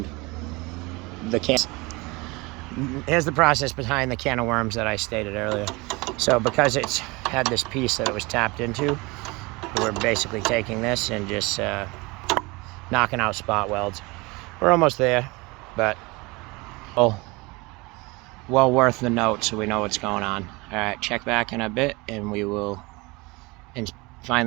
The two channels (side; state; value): left; quieter; 24.9 dB